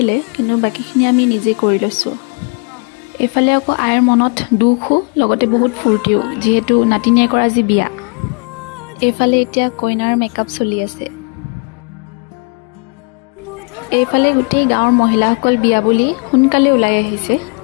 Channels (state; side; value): quieter; right; 36.7 dB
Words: কিন্তু বাকীখিনি আমি নিজে কৰি লৈছোঁ। এইফালে আকৌ আইৰ মনত দুখো লগতে বহুত ফূৰ্তিও, যিহেতু নাতিনীয়ে কৰা আজি বিয়া। এইফালে এতিয়া কইনাৰ মেকআপ চলি আছে। এইফালে গোটেই গাঁৱৰ মহিলাসকল বিয়া বুলি সোনকালে ওলাই আহিছে।